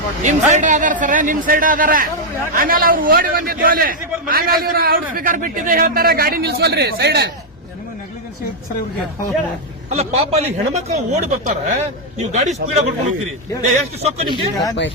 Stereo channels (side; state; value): both; normal; correlation -0.02